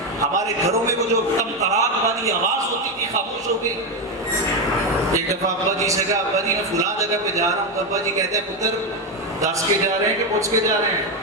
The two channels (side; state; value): both; normal; correlation 0.09